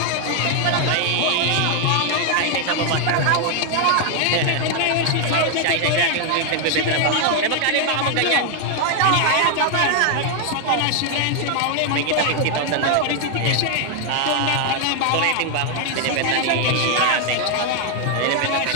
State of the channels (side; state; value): both; different; correlation 0.00